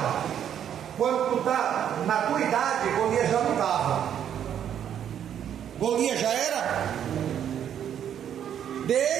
Quando tu está na tua idade, Golias já não estava. Golias já era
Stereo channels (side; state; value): left; quieter; 9.5 dB